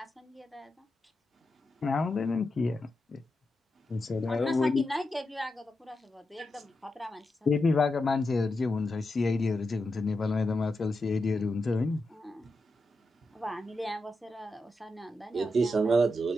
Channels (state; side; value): normal; both; correlation 0.87